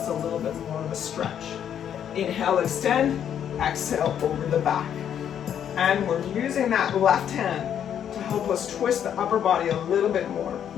a little bit more of a stretch. Inhale, extend. Exhale, over the back. And we're using that left hand to help us twist the upper body a little bit more.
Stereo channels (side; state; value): right; quieter; 9.2 dB